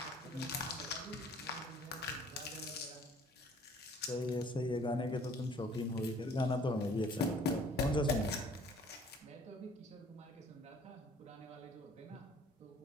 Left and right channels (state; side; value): normal; both; correlation 0.55